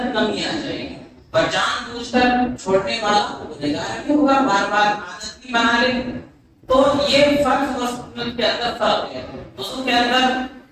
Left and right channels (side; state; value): both; identical; correlation 1.00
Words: کمی آ جائے گی، اور جان بوجھ کر چھوڑنے والا گنہگار بھی ہوگا، بار بار عادت بھی بنا لے۔ تو یہ فرض اور سنت کے اندر فرق ہے۔ وضو کے اندر